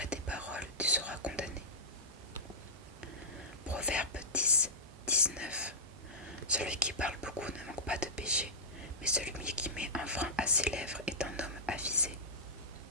tes paroles, tu seras condamné. Proverbe 10, 19. Celui qui parle beaucoup ne manque pas de péché, mais celui qui met un frein à ses lèvres est un homme avisé.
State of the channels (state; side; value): normal; both; correlation -0.12